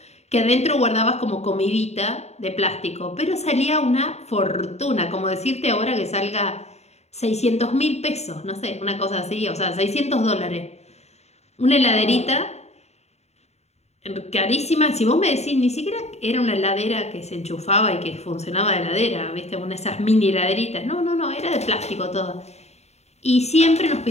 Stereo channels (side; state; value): right; late; 0.31 ms